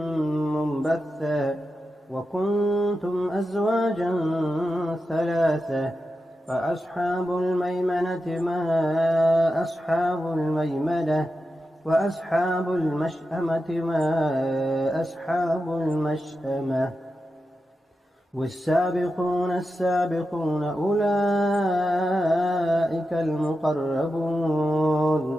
منبثا وكنتم أزواجا ثلاثة فأصحاب الميمنة ما أصحاب الميمنة وأصحاب المشأمة ما أصحاب المشأمة. والسابقون السابقون أولئك المقربون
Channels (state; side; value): normal; both; correlation 0.90